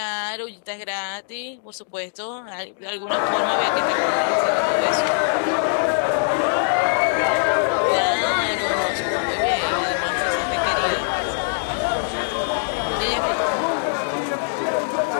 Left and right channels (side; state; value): right; silent; digital silence